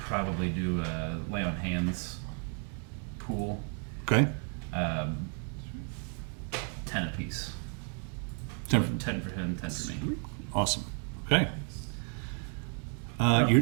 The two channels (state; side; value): quieter; left; 39.5 dB